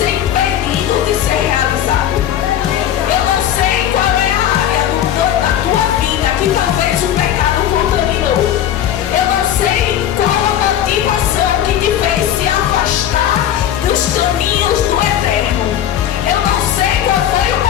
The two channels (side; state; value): right; quieter; 10.7 dB